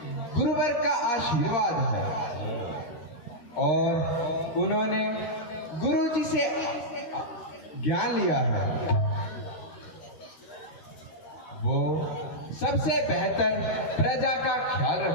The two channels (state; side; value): late; right; 13 ms